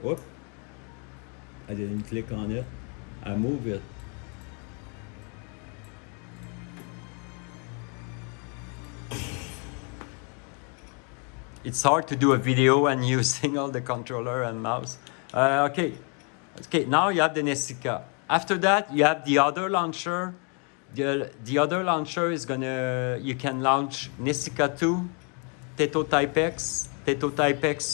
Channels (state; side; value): quieter; right; 37.0 dB